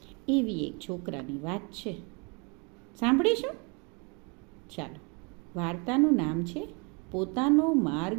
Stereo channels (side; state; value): left; quieter; 32.3 dB